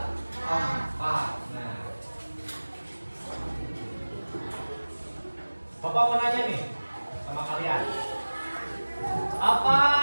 Nah, Bapak mau nanya nih sama kalian, apa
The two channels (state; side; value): inverted; both; correlation -1.00